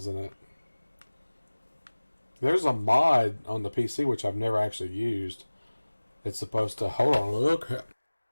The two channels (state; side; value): inverted; both; correlation -1.00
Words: it. There's a mod on the PC which I've never actually used. It's supposed to... Hold on, look.